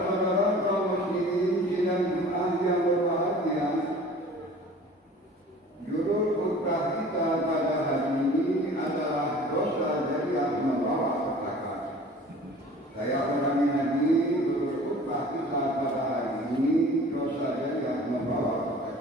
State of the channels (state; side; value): normal; both; correlation 0.45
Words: kaum muslimin sidang Jumat yang berbahagia, judul khutbah kita pada hari ini adalah dosa jariah membawa petaka. Saya ulangi lagi, judul khutbah kita pada hari ini dosa jariah membawa